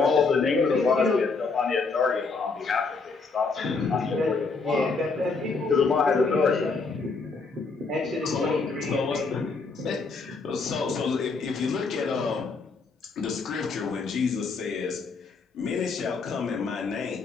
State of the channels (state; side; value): quieter; right; 4.3 dB